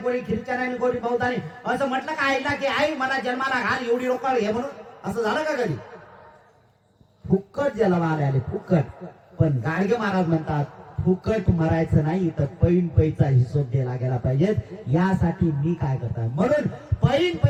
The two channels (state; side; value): identical; both; correlation 1.00